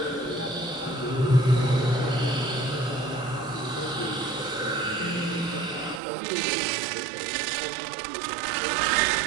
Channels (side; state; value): left; drops out; at 6.0 s